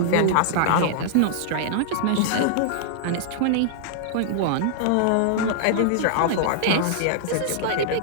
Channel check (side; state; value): both; different; correlation -0.01